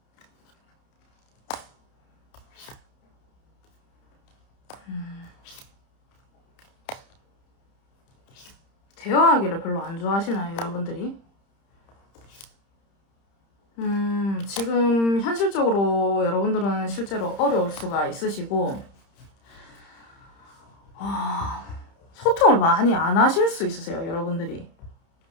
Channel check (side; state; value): right; late; 30 ms